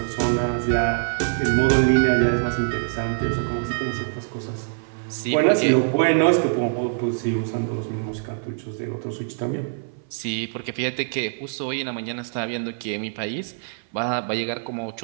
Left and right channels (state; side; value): silent; left; 58 dB below the other